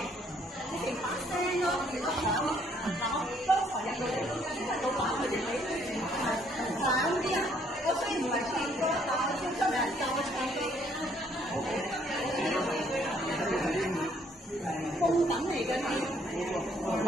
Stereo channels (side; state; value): both; normal; correlation 0.66